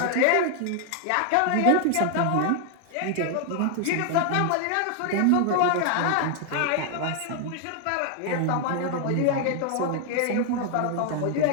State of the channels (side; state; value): both; different; correlation 0.00